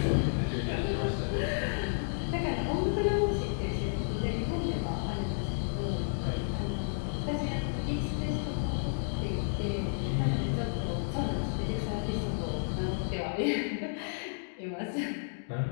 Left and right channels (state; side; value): silent; right; digital silence